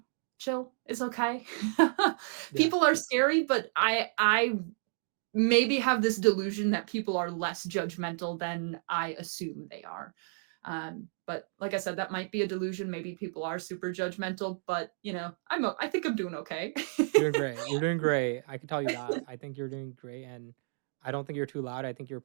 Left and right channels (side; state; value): left; silent; digital silence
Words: chill. It's okay. yeah. People are scary, but I maybe have this delusion that people are less judgmental than I assume they are. But like I said, that might be a delusion. Maybe people are super judgmental, but I think I'm doing okay. You're doing great. You're doing great. I can tell you that. I think you're doing great, and I don't think you're too loud. I think your